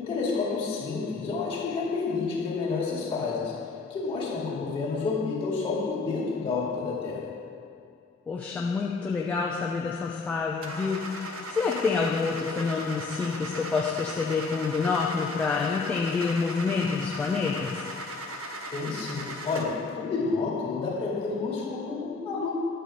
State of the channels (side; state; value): right; quieter; 4.0 dB